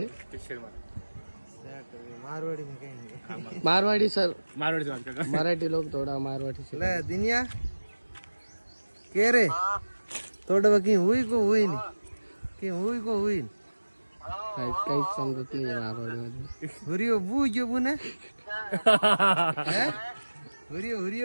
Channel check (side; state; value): both; inverted; correlation -1.00